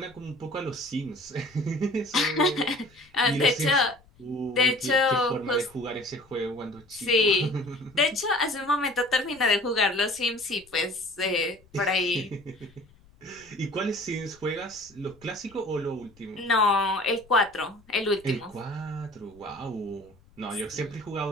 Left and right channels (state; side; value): noise; left; rumble, 28 dB below the sound